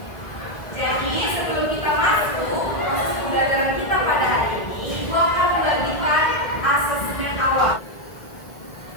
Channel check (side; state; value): right; late; 1.5 ms